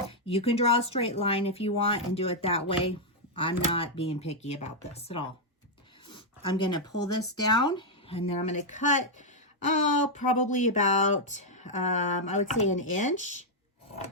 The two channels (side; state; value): both; normal; correlation -0.03